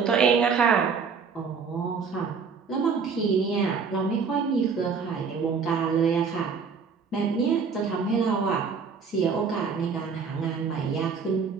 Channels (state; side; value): quieter; left; 5.6 dB